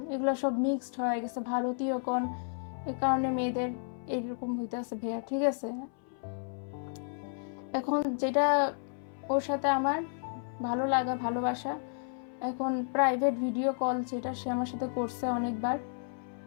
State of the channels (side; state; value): right; silent; 56 dB below the other